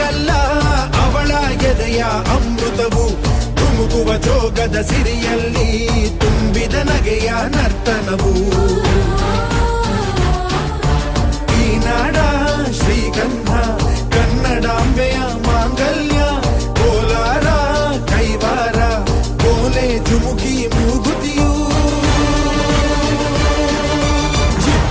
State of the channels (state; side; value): identical; both; correlation 1.00